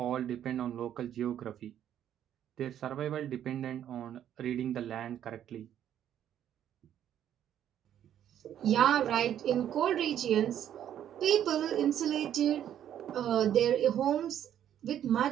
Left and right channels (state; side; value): quieter; left; 10.4 dB